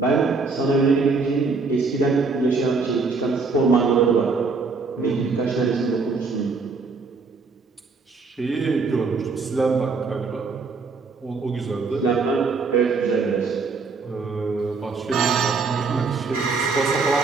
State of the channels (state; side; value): quieter; left; 4.4 dB